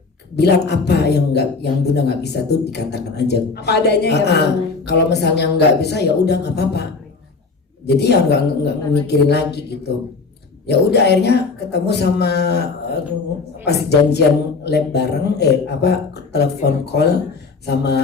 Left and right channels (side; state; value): right; quieter; 4.4 dB